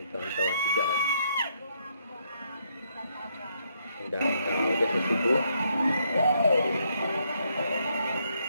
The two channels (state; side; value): inverted; both; correlation -0.74